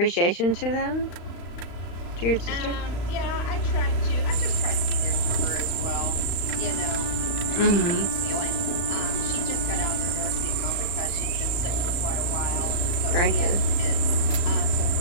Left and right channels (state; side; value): late; right; 34 ms